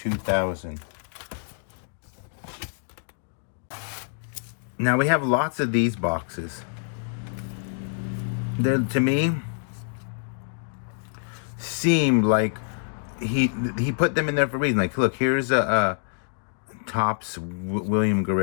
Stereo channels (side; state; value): right; silent; digital silence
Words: Now we have lots of these boxes. They're, to me, seem like he put them in there for a reason. Like, look, here's a Topps William